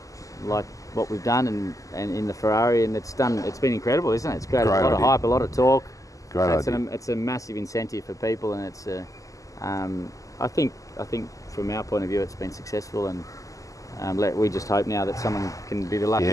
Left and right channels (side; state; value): right; late; 0.16 ms